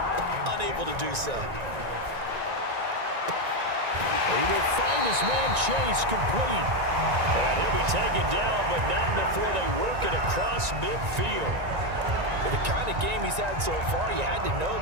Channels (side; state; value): left; late; 1.9 ms